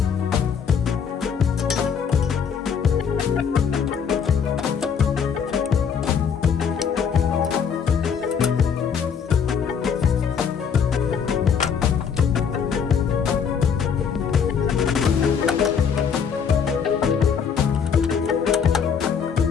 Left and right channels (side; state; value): right; quieter; 6.9 dB